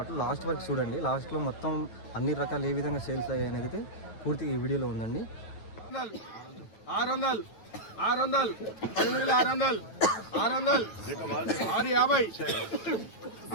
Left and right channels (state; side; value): late; right; 9.2 ms